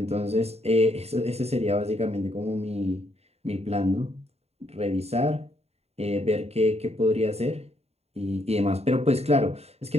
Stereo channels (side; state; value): left; late; 0.30 ms